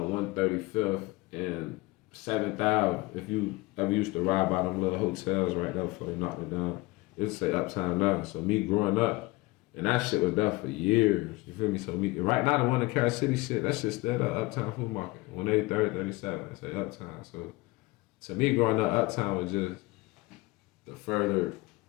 135th and 7th Ave. If you ever used to ride by them little hotels right there before you knocked it down, it'd say Uptown now. So me growing up, and that shit was there for years. You feel me? So right now the one in Kair City shit, that shit's still the Uptown Food Market. 183rd, 37th, it say Uptown. So to me growing up, Uptown was just the further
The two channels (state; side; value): quieter; right; 22.0 dB